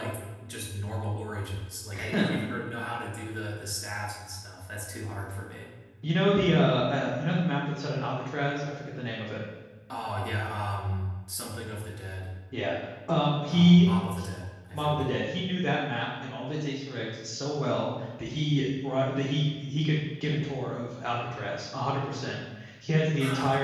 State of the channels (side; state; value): both; identical; correlation 1.00